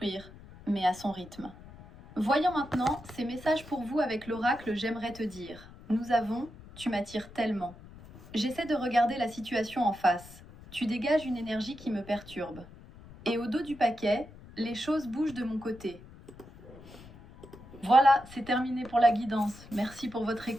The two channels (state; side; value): noise; left; rumble, 19 dB below the sound